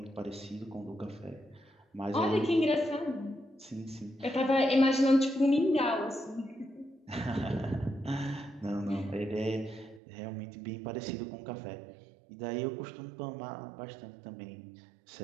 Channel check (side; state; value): left; drops out; at 10.0 s